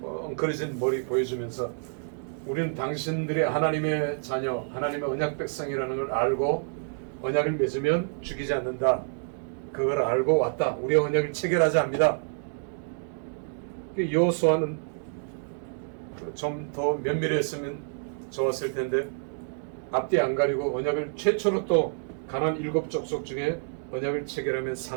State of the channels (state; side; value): silent; left; digital silence